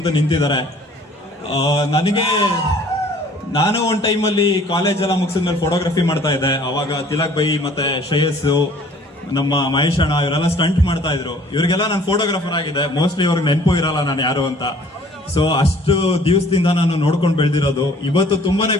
ನಿಂತಿದ್ದಾರೆ. ನಾನು ಒಂದ್ ಟೈಮಲ್ಲಿ ಕಾಲೇಜ್ ಎಲ್ಲ ಮುಗಿಸಿದ್ಮೇಲೆ ಫೋಟೋಗ್ರಫಿ ಮಾಡ್ತಾ ಇದ್ದೆ. ಅವಾಗ ತಿಲಕ್ ಬೈ ಮತ್ತೆ ಶ್ರೇಯಸ್ಸು, ನಮ್ಮ ಮಹೇಶ್ ಅಣ್ಣ ಇವರೆಲ್ಲ ಸ್ಟಂಟ್ ಮಾಡ್ತಾ ಇದ್ರು. ಇವ್ರಿಗೆಲ್ಲ ನಾನು ಫೋಟೋಗ್ರಾಫರ್ ಆಗಿದೆ. ಮೋಸ್ಟ್ಲಿ ಅವ್ರಿಗೆ ನೆನಪು ಇರಲ್ಲ ನಾನು ಯಾರು ಅಂತ. ಸೊ ಅಷ್ಟು ದಿವಸದಿಂದ ನಾನು ನೋಡ್ಕೊಂಡು ಬೆಳೆದಿರೋದು. ಇವತ್ತು ತುಂಬಾನೇ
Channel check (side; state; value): both; normal; correlation 0.54